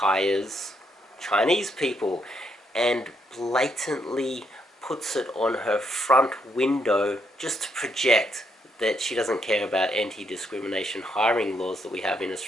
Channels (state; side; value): normal; both; correlation 0.76